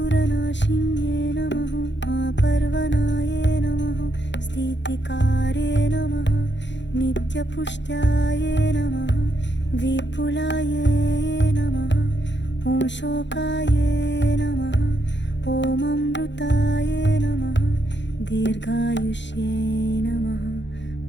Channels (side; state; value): right; late; 0.52 ms